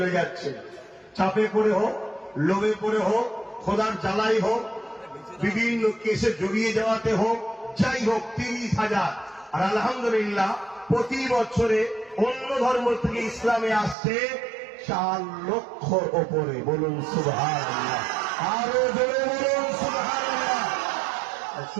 যাচ্ছে। চাপে পড়ে হোক, লোভে পড়ে হোক, খোদার জ্বালাই হোক, বিভিন্ন কেসে জড়িয়ে যাওয়াতে হোক, যাই হোক 30,000। আর আলহামদুলিল্লাহ প্রতি বছরে অন্য ধর্ম থেকে ইসলামে আসছে 4 লক্ষর ওপরে। বলুন সুবহানাল্লাহ, আরো জোরে বলুন সুবহানাল্লাহ।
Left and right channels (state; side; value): drops out; left; at 14.0 s